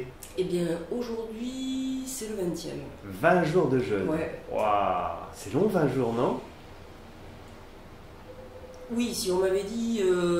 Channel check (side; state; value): both; identical; correlation 1.00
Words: Eh bien aujourd'hui c'est le 20e. 20 jours de jeûne. Ouais. Waouh, c'est long 20 jours, non? Oui, si on m'avait dit